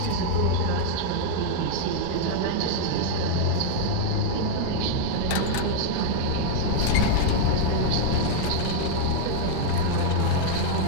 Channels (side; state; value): both; different; correlation -0.01